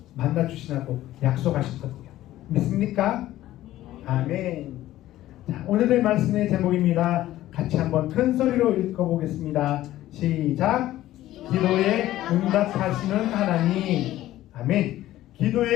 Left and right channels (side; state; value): right; quieter; 14.6 dB